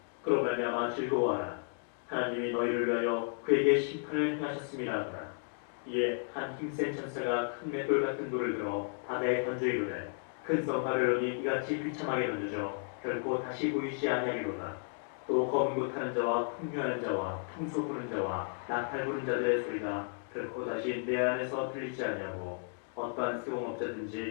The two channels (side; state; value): right; silent; 55 dB below the other